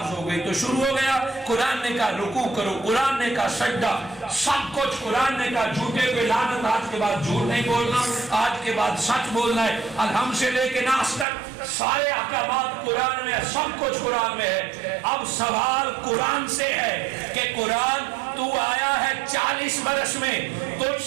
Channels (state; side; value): drops out; left; at 11.2 s